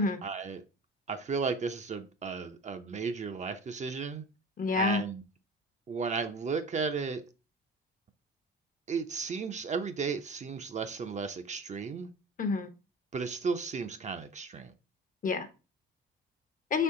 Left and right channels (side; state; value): both; normal; correlation 0.35